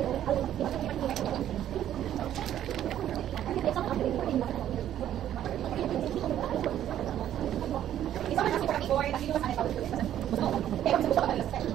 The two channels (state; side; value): quieter; left; 11.3 dB